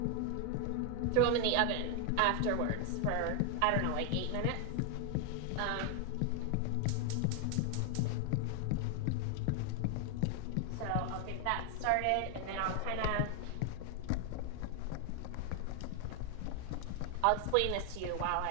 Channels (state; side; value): different; both; correlation 0.00